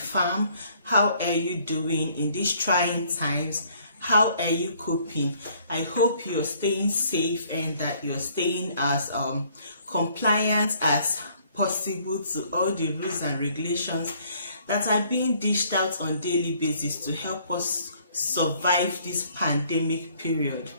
How are you doing in these trying times? How are you coping? I hope you're staying safe and that you're staying as compliant as possible to all the rules and regulations that are being dished out on a daily basis to help us survive this pandemic period.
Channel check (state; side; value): inverted; both; correlation -0.62